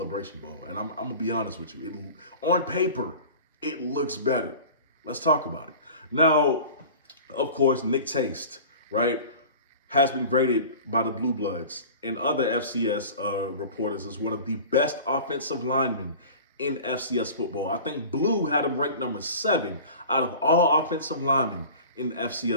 Bowl. And I'm going to be honest with you. On paper, it looks better. Let's talk about it. Now, of course, Nick Taste, right, has been graded by the Blue Bloods and other FCS reporters as one of the best offensive linemen in FCS football. I think Blue had him ranked number 7 out of all offensive linemen in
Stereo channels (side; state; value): both; inverted; correlation -0.39